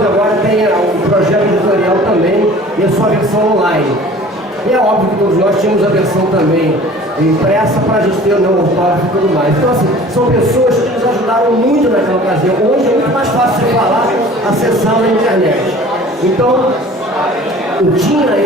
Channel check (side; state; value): both; normal; correlation 0.46